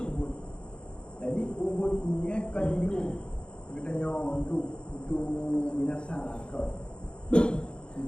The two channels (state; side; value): late; right; 0.053 ms